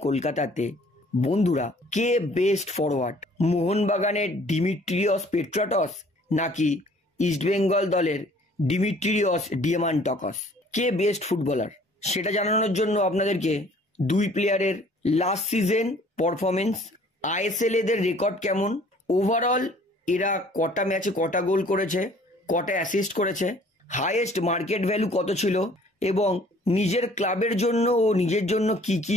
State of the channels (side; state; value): both; normal; correlation 0.55